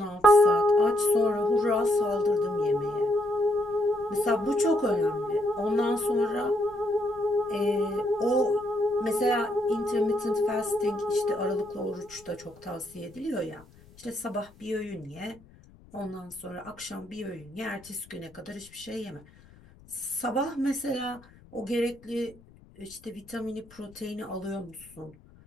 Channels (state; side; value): noise; left; rumble, 25 dB below the sound